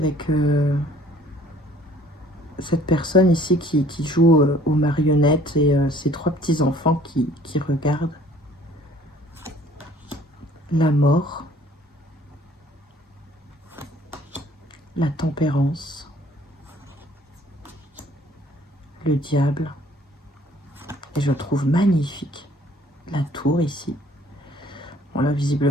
cette personne ici qui joue aux marionnettes et ses trois petits enfants qui regardent. La mort, la tempérance, le diable, et je trouve magnifique la tour ici. Bon là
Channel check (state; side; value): normal; both; correlation 0.56